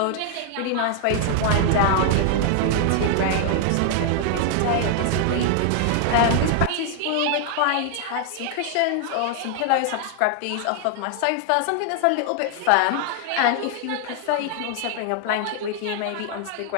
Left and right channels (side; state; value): both; different; correlation 0.00